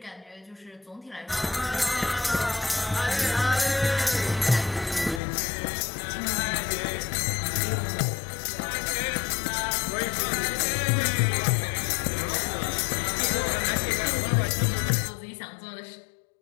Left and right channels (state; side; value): drops out; right; at 5.2 s